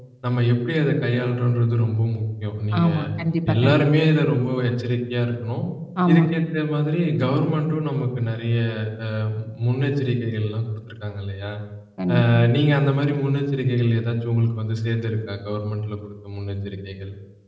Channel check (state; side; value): identical; both; correlation 1.00